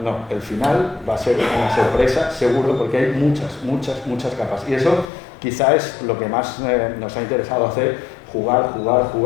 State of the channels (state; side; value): drops out; right; at 5.1 s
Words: No, el final va a ser una sorpresa, seguro, porque hay muchas capas. Y eso quizá es lo que más nos ha interesado hacer, jugar.